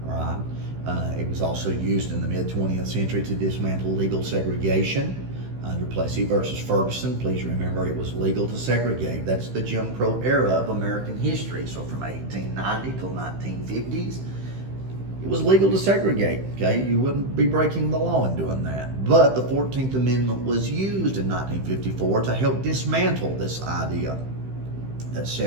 All right? It was also used in the mid-20th century to dismantle legal segregation. Under Plessy versus Ferguson, please remember it was legal to segregate. That's the Jim Crow era of American history. So from 1890 till 1950s, it was legal to segregate, okay? You wouldn't be breaking the law in doing that. But the 14th Amendment was used in 1954 to help dismantle this idea that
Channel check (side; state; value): left; late; 15 ms